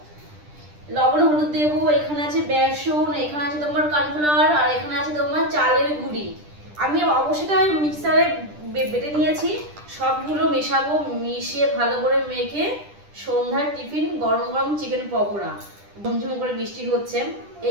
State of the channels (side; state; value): left; late; 10 ms